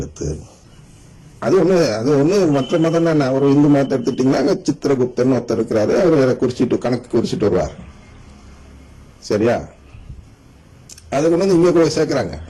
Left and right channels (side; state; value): both; identical; correlation 1.00